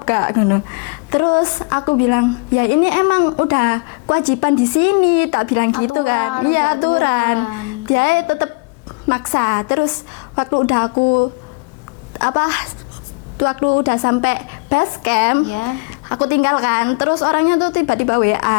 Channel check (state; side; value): quieter; right; 31.0 dB